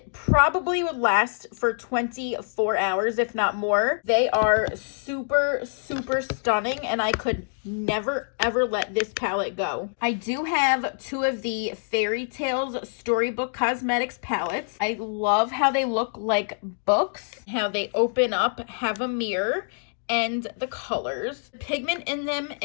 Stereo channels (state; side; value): silent; right; digital silence